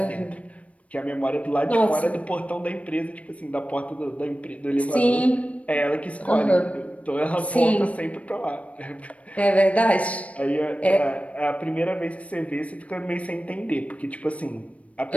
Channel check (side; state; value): right; late; 0.065 ms